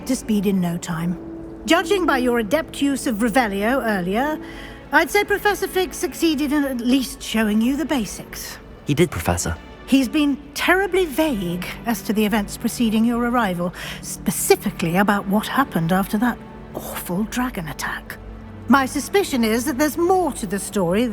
to speed in no time. Judging by your adept use of Revelio earlier, I'd say Professor Fig succeeded in at least showing you the basics. He did, Professor. He's been terribly vague as to the events preceding your arrival, specifically about what happened after that awful dragon attack. My suspicion is that there's more to the story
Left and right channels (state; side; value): identical; both; correlation 1.00